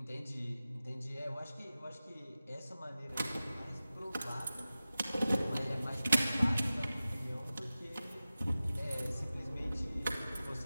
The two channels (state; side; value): inverted; both; correlation -0.95